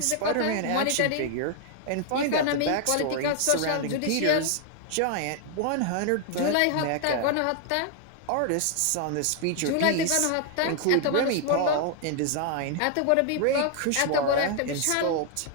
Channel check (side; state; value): both; different; correlation 0.00